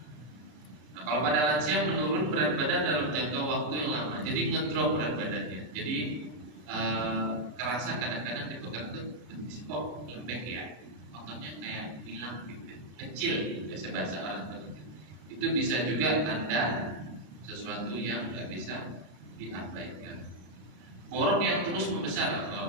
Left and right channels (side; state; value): left; late; 34 ms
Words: Nah, kalau pada lansia menurun berat badan dalam jangka waktu yang lama, jadi ngedrop berat badannya. Jadi kerasa kadang-kadang dipegang tuh kok lembek ya, ototnya kayak hilang gitu, kecil, biasa bahasa orang begitu. Itu bisa juga tanda sesuatu yang nggak bisa diabaikan. Borok yang terus membesar,